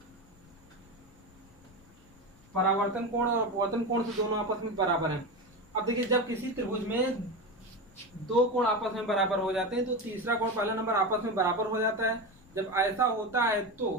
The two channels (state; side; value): noise; left; rumble, 26 dB below the sound